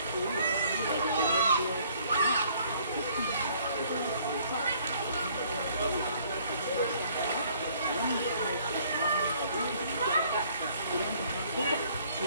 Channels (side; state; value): both; inverted; correlation -0.60